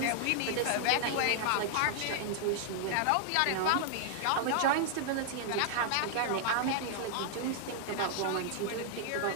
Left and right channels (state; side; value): different; both; correlation -0.01